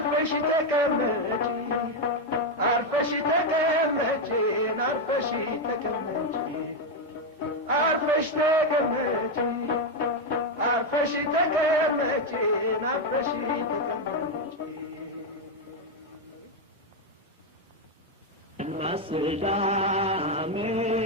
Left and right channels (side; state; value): both; normal; correlation 0.05